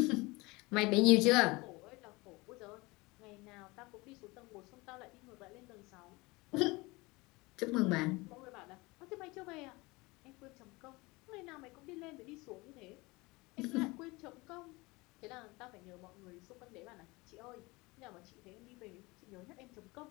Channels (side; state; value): right; quieter; 23.7 dB